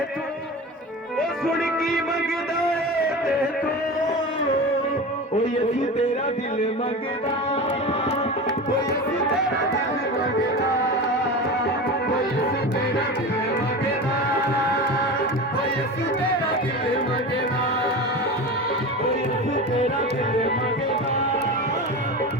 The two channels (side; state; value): both; normal; correlation 0.29